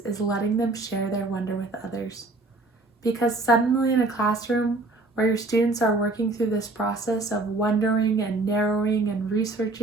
letting them share their wonder with others. Because suddenly in a classroom where your students are working through this process of wondering and narrowing and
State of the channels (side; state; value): left; quieter; 3.2 dB